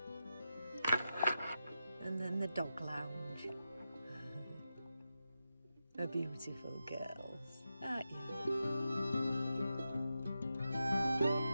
And then the dog lounge. A beautiful girls, aren't you?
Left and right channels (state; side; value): inverted; both; correlation -0.89